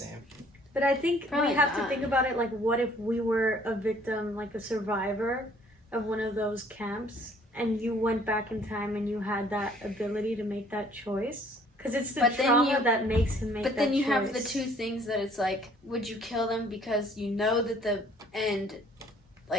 But I think Probably we have not. to think about it like, what if we were a victim, like a survivor of one of those camps, and you went back in time and you had that ability to make that choice? Because it's the But then trauma you- that makes him make that choice. But then you have the two things that it's like, would you kill them because you know that the end,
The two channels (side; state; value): both; normal; correlation 0.58